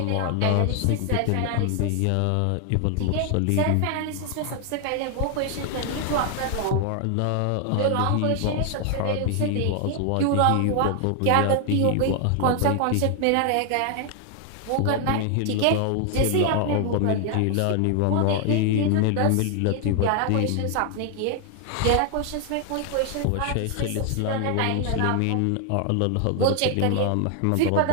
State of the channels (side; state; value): both; different; correlation 0.00